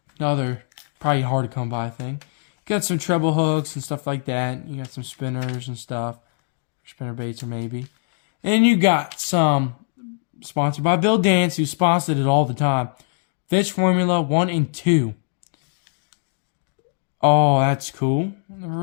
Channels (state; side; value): silent; right; digital silence